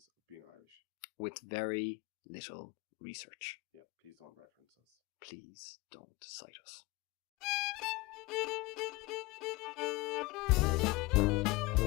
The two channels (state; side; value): quieter; right; 22.5 dB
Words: of being Irish. With very little research. Yeah, please don't reference us. Please don't cite us.